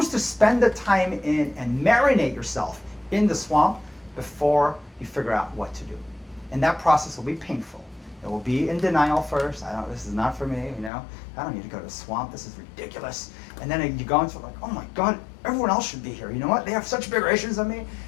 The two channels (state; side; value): drops out; right; at 10.9 s